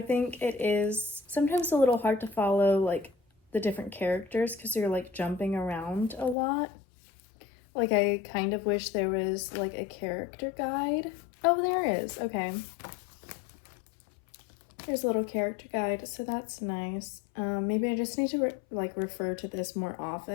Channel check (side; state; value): right; drops out; at 6.4 s